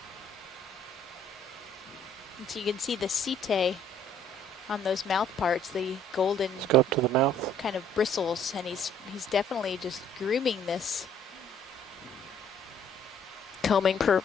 And so you can see the setae on those mouth parts, the golden Let's go up to the mouth. kind of bristles, and he's definitely just grooming this. Combing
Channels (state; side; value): normal; both; correlation 0.60